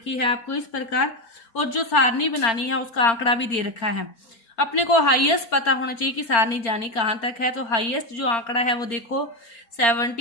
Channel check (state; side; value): late; right; 4.4 ms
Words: है आपको इस प्रकार, और जो सारणी बनानी है उसका आंकड़ा भी दे रखा है। अपने को हाईएस्ट पता होना चाहिए कि सारणी जानी कहाँ तक है। तो हाईएस्ट जो आंकड़ा है वो देखो